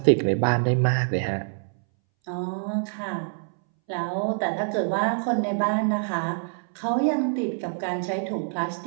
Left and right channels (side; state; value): left; silent; 61 dB below the other